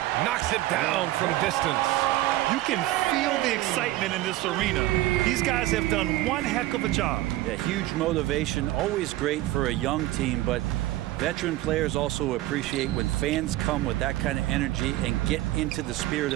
Knocks it down from distance. You can feel the excitement in this arena. These guys have done one heck of a job. Yeah, huge motivation, always great for a young team, but veteran players also appreciate when fans come with that kind of energy and get into the spirit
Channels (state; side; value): quieter; left; 16.4 dB